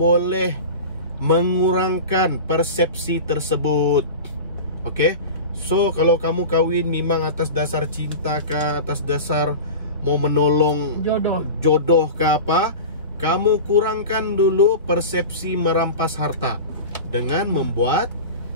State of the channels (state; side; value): inverted; both; correlation -0.30